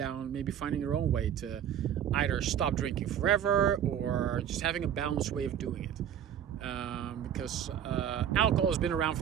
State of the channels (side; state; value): left; quieter; 9.5 dB